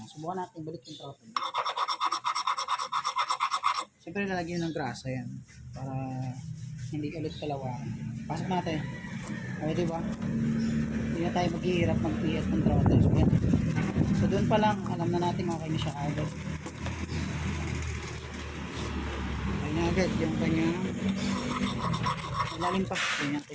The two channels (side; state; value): both; identical; correlation 1.00